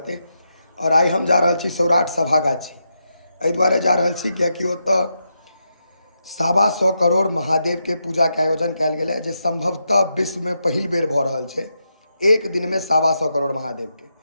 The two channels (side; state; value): both; inverted; correlation -0.84